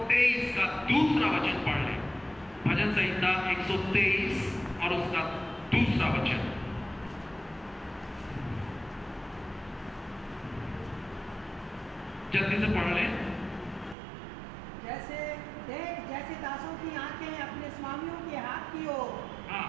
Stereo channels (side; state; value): left; drops out; at 14.0 s